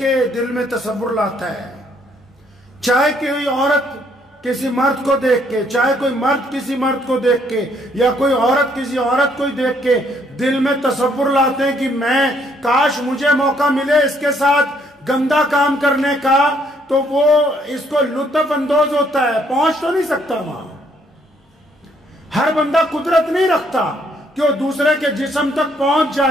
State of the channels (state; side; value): normal; both; correlation 0.68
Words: دل میں تصور لاتا ہے، چاہے کوئی عورت کسی مرد کو دیکھ کے، چاہے کوئی مرد کسی مرد کو دیکھ کے، یا کوئی عورت کسی عورت کو دیکھ کے دل میں تصور لاتے ہیں کہ میں کاش مجھے موقع ملے اس کے ساتھ گندا کام کرنے کا، تو وہ اس کو لطف اندوز ہوتا ہے، پہنچ تو نہیں سکتا وہاں۔ ہر بندہ قدرت نہیں رکھتا کہ وہ دوسرے کے جسم تک پہنچ